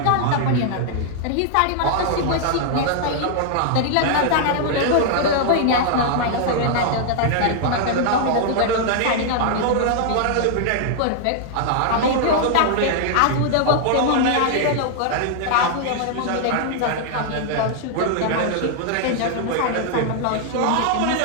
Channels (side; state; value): both; different; correlation -0.01